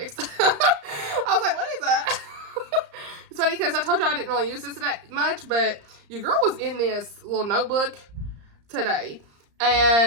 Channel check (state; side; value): late; left; 34 ms